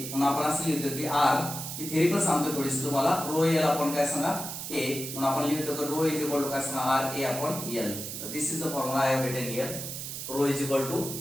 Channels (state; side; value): noise; right; hiss, 7 dB below the sound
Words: म्हणून आपण असं लिहितो की R मी थेरी पण सांगतो थोडीशी तुम्हाला. रो L आपण काय सांगा A. म्हणून आपण लिहितो की रो इज इक्वल टू काय सांगा R A अपॉन L. तर this is the formula I have written here. Rho is equal to